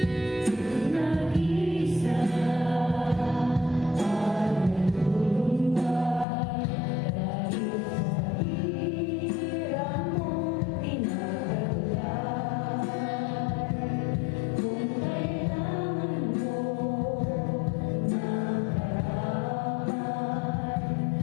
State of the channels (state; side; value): drops out; right; at 6.2 s